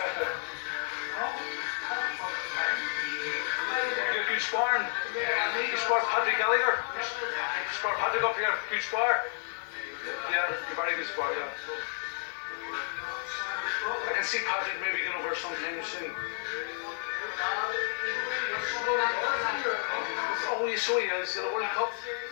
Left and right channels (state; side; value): silent; right; digital silence